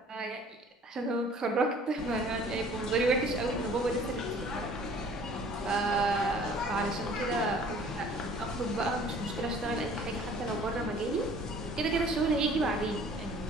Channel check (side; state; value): both; normal; correlation 0.52